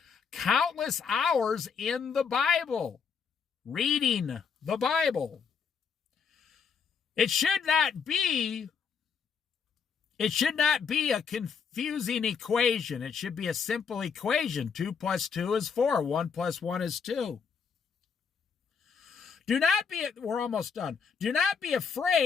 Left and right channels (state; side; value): quieter; right; 6.3 dB